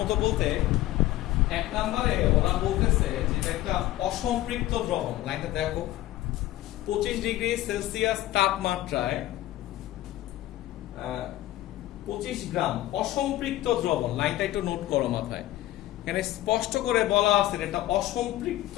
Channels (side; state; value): right; quieter; 15.4 dB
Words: বলতে, 1 নম্বরে ওরা বলতেছে যে এটা একটা অসম্পৃক্ত দ্রবণ। লাইনটা দেখো, 25 ডিগ্রি সেলসিয়াস তাপমাত্রায় 25 গ্রাম অসম্পৃক্ত দ্রবণ। লাইনটা একটু নোট করো মাথায়। এখানে স্পষ্ট করে বলা আছে এটা অসম্পৃক্ত